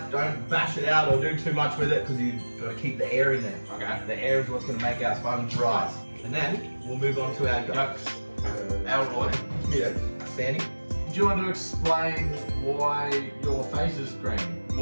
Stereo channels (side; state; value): both; inverted; correlation -1.00